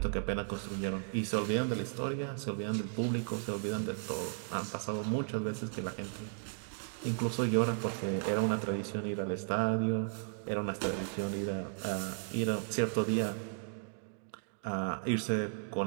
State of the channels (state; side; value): silent; left; 54 dB below the other